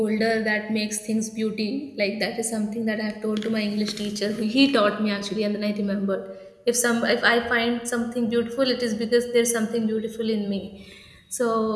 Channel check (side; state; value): both; identical; correlation 1.00